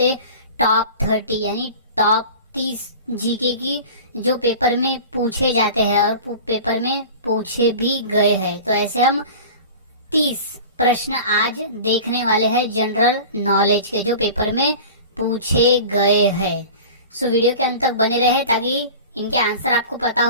टॉप 30 यानी टॉप 30 जीके की जो पेपर में पूछे जाते हैं और पेपर में पूछे भी गए हैं। तो ऐसे हम 30 प्रश्न आज देखने वाले हैं जनरल नॉलेज के, जो पेपर में पूछे गए हैं। सो वीडियो के अंत तक बने रहे ताकि इनके आंसर आपको पता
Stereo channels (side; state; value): both; inverted; correlation -0.37